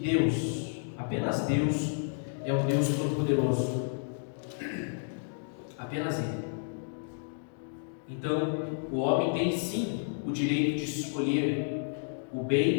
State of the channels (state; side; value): silent; right; digital silence